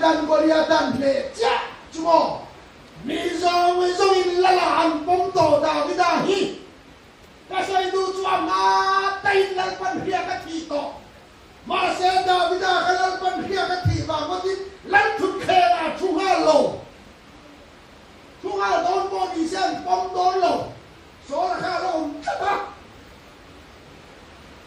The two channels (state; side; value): identical; both; correlation 1.00